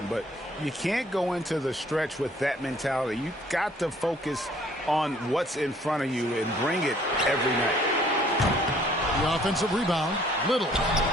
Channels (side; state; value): both; normal; correlation 0.59